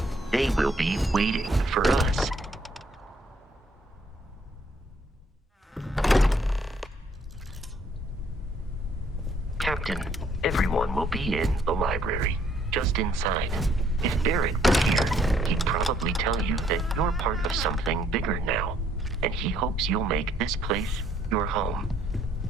They will be waiting for us. Captain, everyone will be in the library, just inside. If Barrett was here, he'd probably tell you that you're part of something bigger now, and he hopes you'll make this place your home.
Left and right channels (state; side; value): normal; both; correlation 0.66